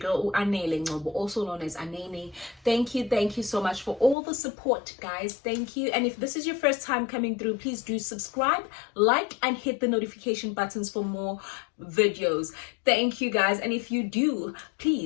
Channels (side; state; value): right; drops out; at 4.2 s